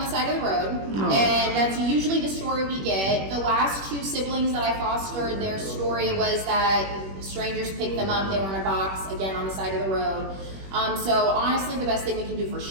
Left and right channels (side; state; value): left; late; 21 ms